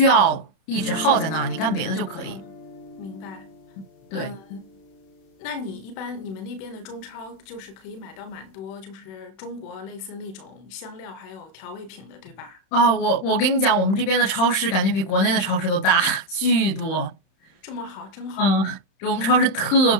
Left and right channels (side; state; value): right; late; 31 ms